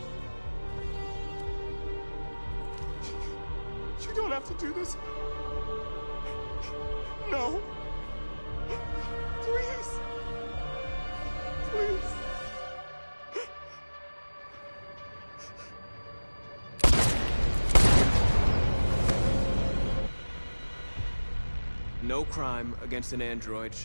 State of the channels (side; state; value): both; inverted; correlation -1.00